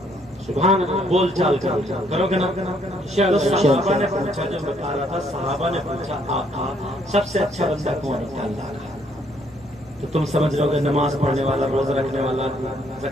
سبحان اللہ، بول چال کرو گے نا۔ صحابہ نے پوچھا، جو بتا رہا تھا صحابہ نے پوچھا آقا سب سے اچھا بندہ کون ہے؟ اللہ کا۔ تو تم سمجھ رہے ہو کہ نماز پڑھنے والا، روزہ رکھنے والا،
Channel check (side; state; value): both; normal; correlation 0.68